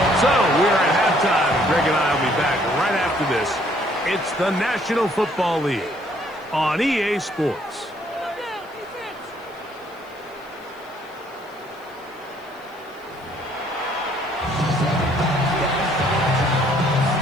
So we're at halftime. Greg and I will be back right after this. It's the National Football League on EA Sports.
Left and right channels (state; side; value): noise; left; hiss, 29 dB below the sound